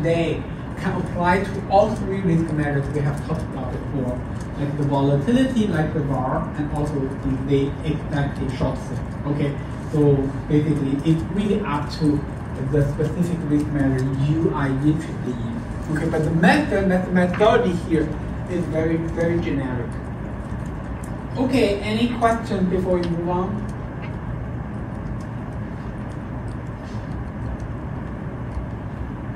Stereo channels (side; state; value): both; identical; correlation 1.00